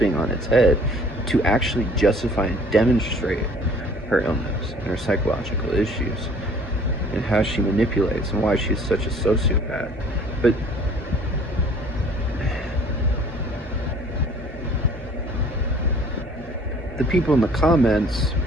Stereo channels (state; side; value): normal; both; correlation 0.53